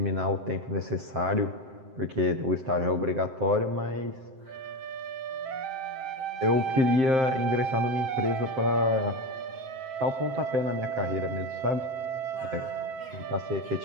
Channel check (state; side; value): late; left; 7.7 ms